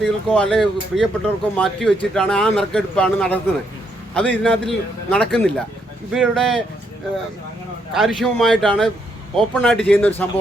അല്ലെങ്കിൽ പ്രിയപ്പെട്ടവർക്കോ മാറ്റി വെച്ചിട്ടാണ് ആ നറുക്കെടുപ്പാണ് നടത്തുന്നത്. അത് ഇതിനകത്തിൽ നടക്കുന്നില്ല. ഇവരുടെ കാര്യക്ഷമമായിട്ടാണ് ഓപ്പണായിട്ട് ചെയ്യുന്ന ഒരു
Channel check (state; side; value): normal; both; correlation 0.75